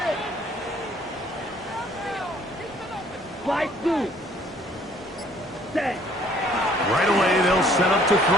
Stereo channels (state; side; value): normal; both; correlation 0.60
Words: Fly through. Set. Right away, they'll set up to